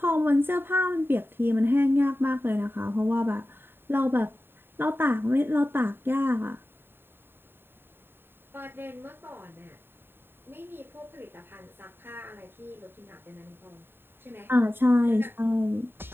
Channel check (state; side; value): late; left; 0.11 ms